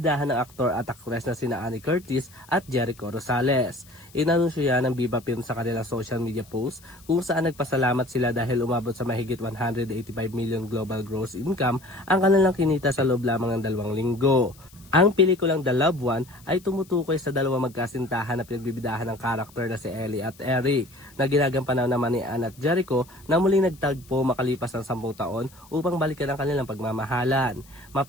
ng aktor at aktres na sina Ann Curtis at Jericho Rosales. Inanunsyo yan ng Viva Films sa kanilang social media post kung saan nagpasalamat sila dahil umabot sa mahigit 185 million global gross income ang kanilang kinita sa loob lamang ng 2 linggo. Ang pelikulang The Loved One ay tumutukoy sa dalawang magkasintahan na pinagbibidahan ng karakter na si Ellie at Eric na ginagampanan naman ni Ann at Jericho na muling nagtagpo makalipas ng 10 taon upang balikan ang kanilang pagmamahalan.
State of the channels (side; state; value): left; noise; hiss, 25 dB below the sound